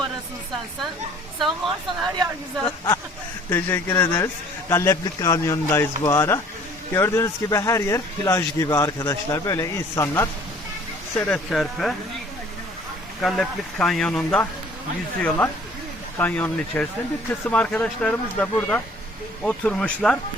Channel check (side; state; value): both; normal; correlation 0.53